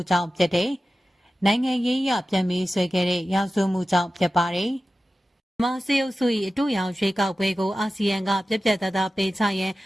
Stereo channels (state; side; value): normal; both; correlation 0.94